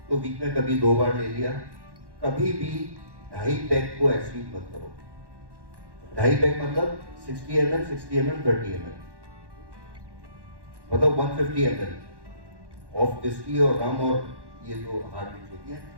तो वीक में कभी 2 बार ले लिया। कभी भी 2.5 पैक को एक्सीड मत करो। 2.5 पैक मतलब 60 ml, 60 ml, 30 ml, मतलब 150 ml ऑफ विस्की और रम और ये जो हार्ड ड्रिंक्स होती है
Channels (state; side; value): late; left; 1.1 ms